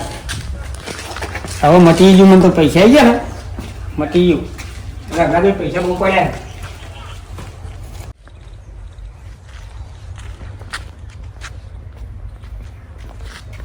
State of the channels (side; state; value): both; identical; correlation 1.00